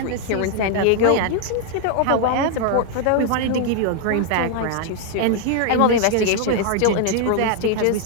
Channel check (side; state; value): both; different; correlation 0.00